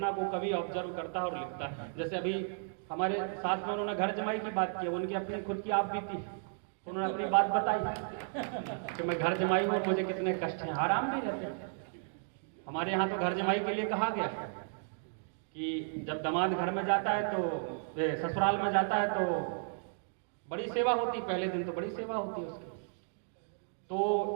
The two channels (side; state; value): left; silent; digital silence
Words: को कभी ऑब्जर्व करता है और लिखता है। जैसे अभी हमारे साथ में उन्होंने घर जमाई की बात की, उनकी अपनी खुद की आप बीती, उन्होंने अपनी बात बताई कि मैं घर जमाई हूँ, मुझे कितने कष्ट हैं। आराम भी रहते हैं। हमारे यहाँ तो घर जमाई के लिए कहा गया कि जब दामाद घर में जाता है तो ससुराल में जाता है तो बड़ी सेवा होती, पहले दिन तो बड़ी सेवा होती है उसकी। तो